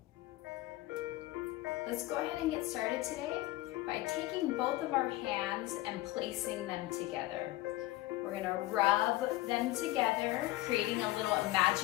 Let's go ahead and get started today by taking both of our hands and placing them together. We're gonna rub them together, creating a little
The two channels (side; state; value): right; quieter; 17.8 dB